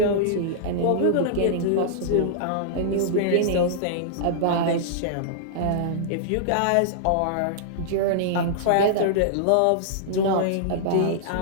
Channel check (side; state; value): both; different; correlation -0.02